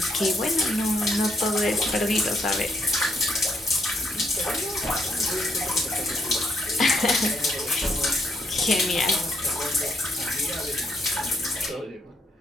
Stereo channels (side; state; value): both; normal; correlation 0.73